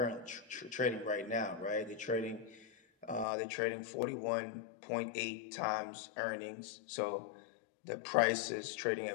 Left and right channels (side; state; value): right; drops out; at 3.2 s